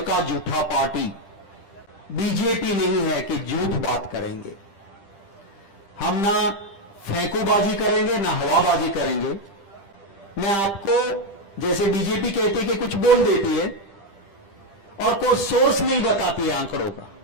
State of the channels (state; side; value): late; right; 10 ms